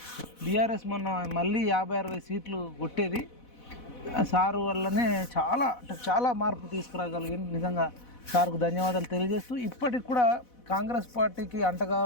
బీఆర్ఎస్ మొన్న మళ్ళీ 50-60 సీట్లు కొట్టేది. సారు వల్లనే చాలా మార్పు తీసుకురాగలిగింది. నిజంగా సార్కు ధన్యవాదాలు తెలియజేస్తూ, ఇప్పటికి కూడా కాంగ్రెస్ పార్టీకి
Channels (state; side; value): late; right; 4.1 ms